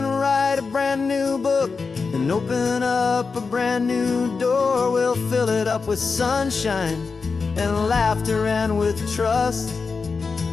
write a brand new book and open up a brand new door. We'll fill it up with sunshine and laughter and with trust,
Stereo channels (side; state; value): right; quieter; 4.8 dB